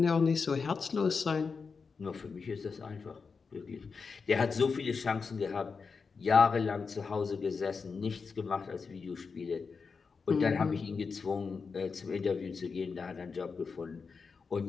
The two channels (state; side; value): quieter; right; 5.1 dB